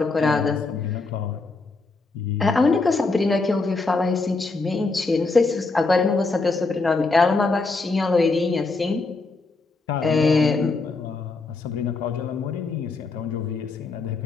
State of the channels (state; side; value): quieter; right; 3.7 dB